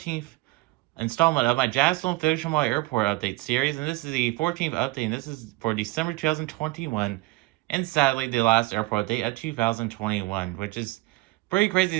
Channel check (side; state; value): left; quieter; 20.9 dB